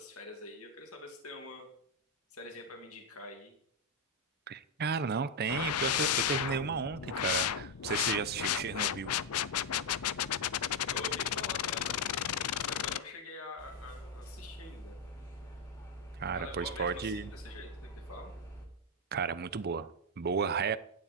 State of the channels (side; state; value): both; normal; correlation 0.03